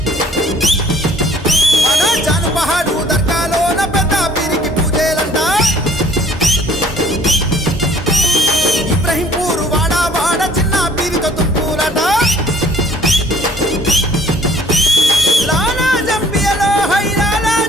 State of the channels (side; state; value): both; normal; correlation 0.56